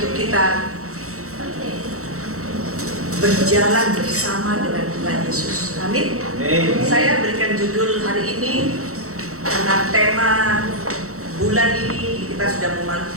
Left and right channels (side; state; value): left; late; 0.64 ms